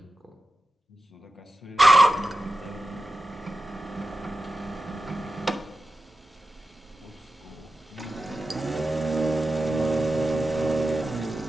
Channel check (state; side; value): normal; both; correlation 0.92